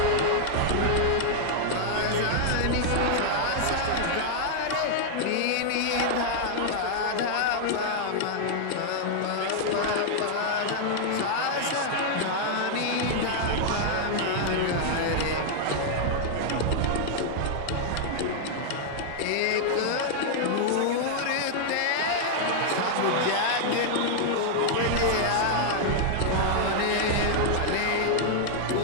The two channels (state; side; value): different; both; correlation -0.01